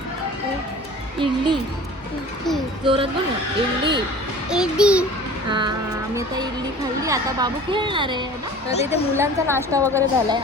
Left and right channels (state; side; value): normal; both; correlation 0.43